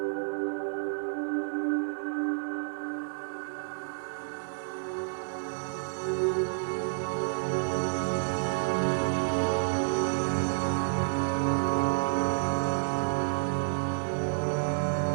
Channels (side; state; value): left; silent; 58 dB below the other